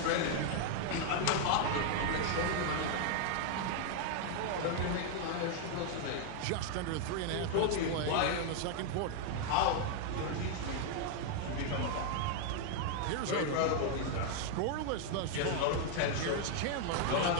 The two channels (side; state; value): both; different; correlation 0.00